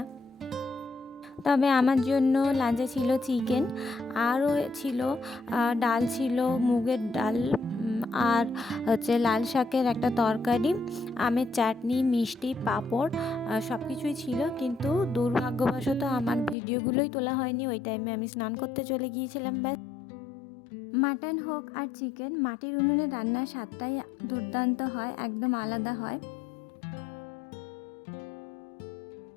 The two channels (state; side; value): drops out; right; at 16.6 s